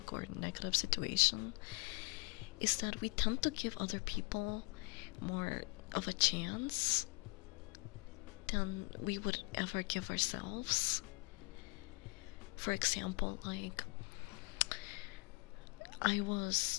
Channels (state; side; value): quieter; right; 29.7 dB